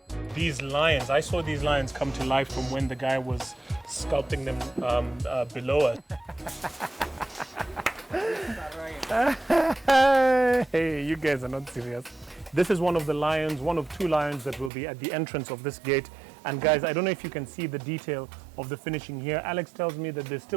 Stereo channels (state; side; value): drops out; left; at 14.7 s